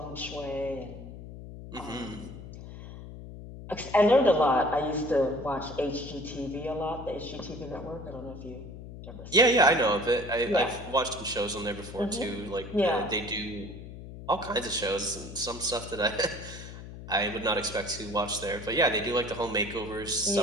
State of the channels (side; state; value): left; noise; hum, 12 dB below the sound